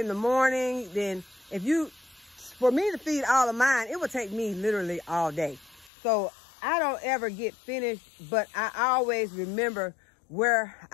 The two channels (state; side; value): drops out; right; at 5.9 s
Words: the morning, then for me to feed all of mine, it would take me literally all day. So I don't ever get finished, but I always remember where